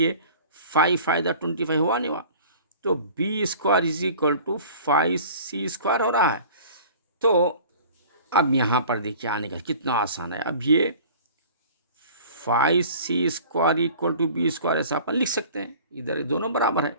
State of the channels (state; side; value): inverted; both; correlation -0.45